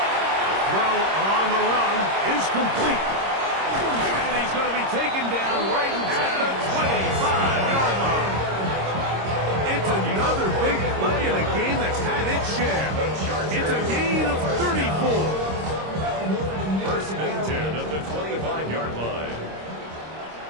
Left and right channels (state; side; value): late; left; 26 ms